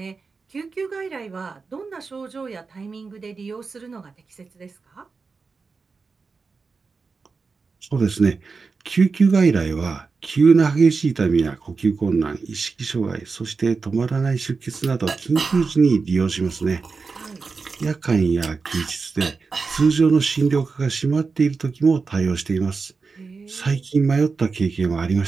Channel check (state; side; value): quieter; left; 4.6 dB